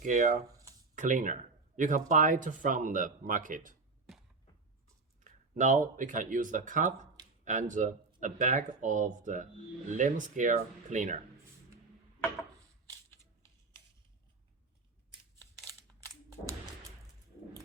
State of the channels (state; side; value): quieter; left; 3.9 dB